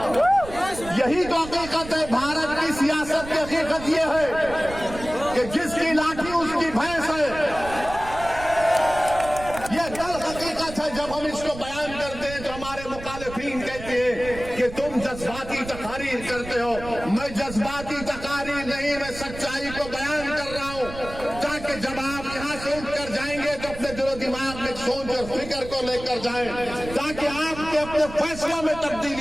यही तो हकीकत है। भारत की सियासत की हकीकत ये है कि जिसकी लाठी उसकी भैंस है। ये कल हकीकत है। जब हम इसको बयान करते हैं तो हमारे मुखालिफिन कहते हैं कि तुम जज्बाती तकारीर करते हो। मैं जज्बाती तकारीर नहीं, मैं सच्चाई को बयान कर रहा हूं ताकि जब आप यहां से उठकर जाएंगे तो अपने दिलो दिमाग में सोच और फिक्र को लेकर जाएं, ताकि आपके अपने फैसलों में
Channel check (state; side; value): noise; right; rumble, 12 dB below the sound